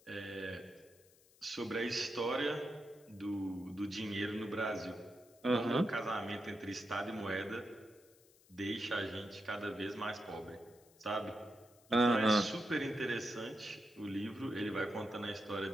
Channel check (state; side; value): noise; left; hiss, 28 dB below the sound